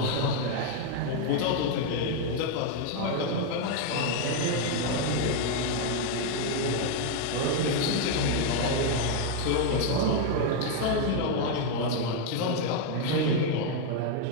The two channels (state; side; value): different; both; correlation 0.01